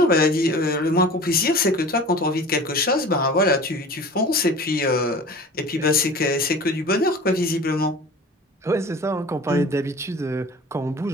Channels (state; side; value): normal; both; correlation 0.40